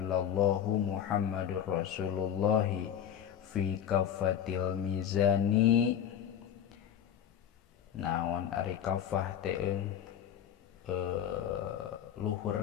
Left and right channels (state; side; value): quieter; right; 9.5 dB